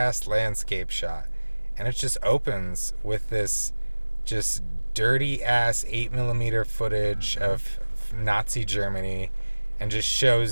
landscape shot. And it just opens with this just dirty ass 8mm footage of Nazi Germany, and just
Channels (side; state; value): both; inverted; correlation -1.00